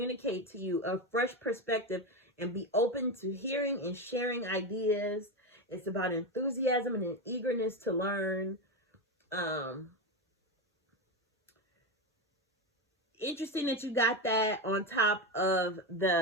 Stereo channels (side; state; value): both; normal; correlation 0.15